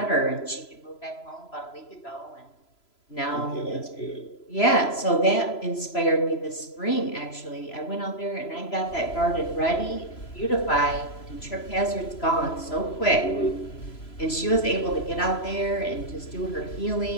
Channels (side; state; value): right; late; 3.0 ms